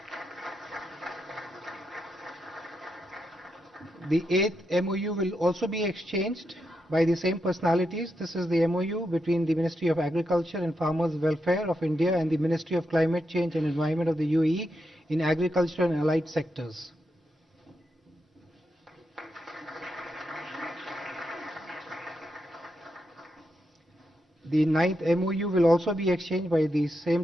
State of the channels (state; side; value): normal; both; correlation 0.84